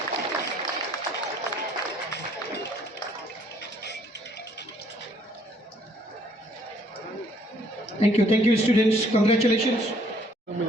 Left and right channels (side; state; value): both; normal; correlation 0.63